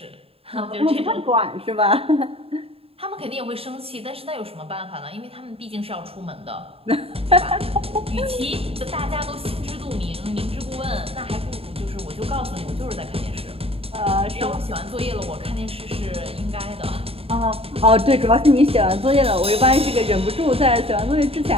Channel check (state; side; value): late; left; 0.28 ms